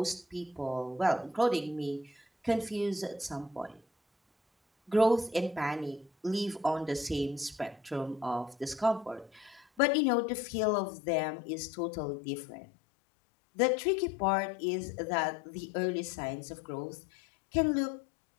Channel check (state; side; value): drops out; right; at 9.7 s